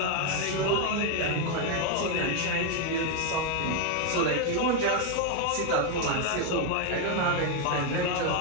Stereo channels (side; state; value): both; different; correlation 0.01